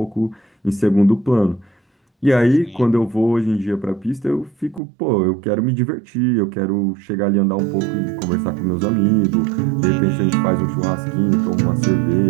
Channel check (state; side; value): drops out; left; at 4.8 s